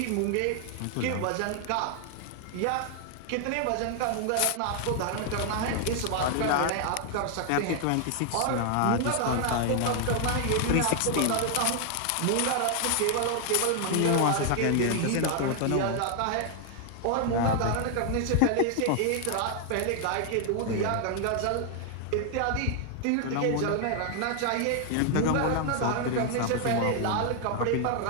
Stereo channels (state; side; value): different; both; correlation 0.00